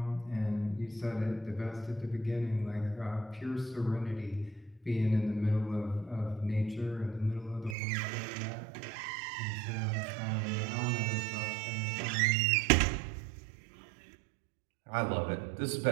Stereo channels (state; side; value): drops out; left; at 7.8 s